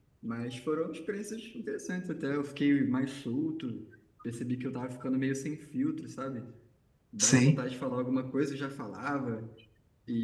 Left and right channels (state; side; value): identical; both; correlation 1.00